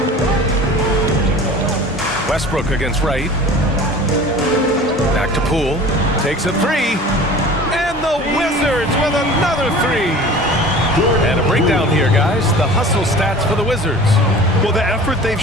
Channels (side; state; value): both; normal; correlation 0.41